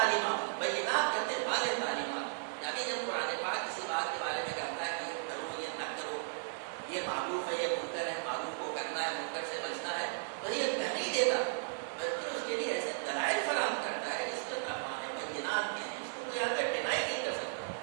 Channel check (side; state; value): left; silent; digital silence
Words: بینات کہتے ہیں واضح تعلیمات. یعنی جب قرآن پاک کسی بات کے بارے میں کہتا ہے کہ یہ کرو، یہ نہ کرو، یہ معروف ہے، یہ منکر ہے، معروف کو کرنا ہے، منکر سے بچنا ہے، تو یہ کہہ نہیں دیتا، بلکہ اس کے لیے ایسے دلائل فراہم کرتا ہے جس کے معنی بینات کے ہیں، اس کو کوئی آدمی ڈینائی نہیں کر سکتا.